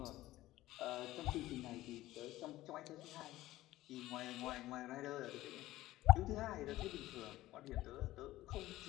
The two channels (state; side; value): quieter; right; 16.2 dB